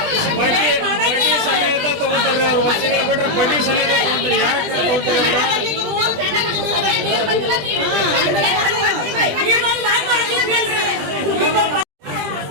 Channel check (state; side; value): late; left; 20 ms